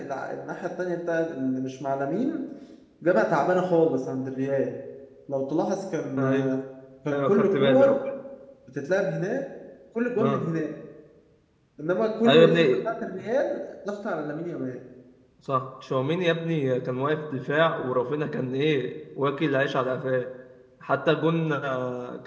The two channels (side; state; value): both; identical; correlation 1.00